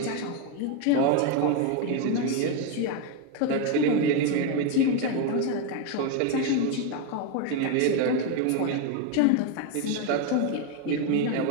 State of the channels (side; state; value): both; different; correlation 0.02